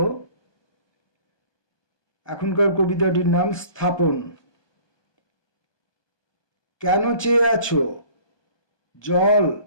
এখনকার কবিতাটির নাম স্থাপন। কেন চেয়ে আছো জল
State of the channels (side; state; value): right; late; 1.2 ms